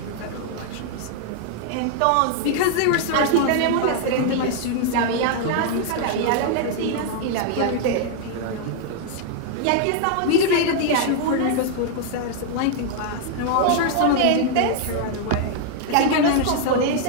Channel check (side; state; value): both; different; correlation 0.00